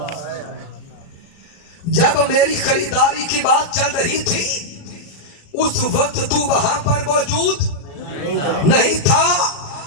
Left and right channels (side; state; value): right; late; 36 ms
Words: جب میری خریداری کی بات چل رہی تھی اس وقت تو وہاں پر موجود نہیں تھا.